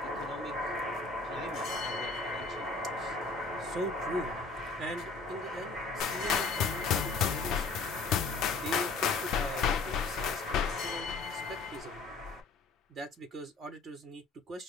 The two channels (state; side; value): quieter; right; 4.0 dB